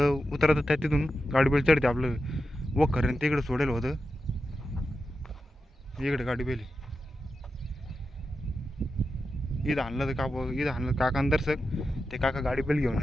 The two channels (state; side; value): normal; both; correlation 0.90